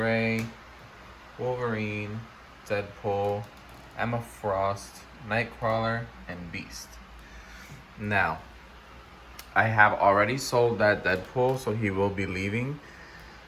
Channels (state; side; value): identical; both; correlation 1.00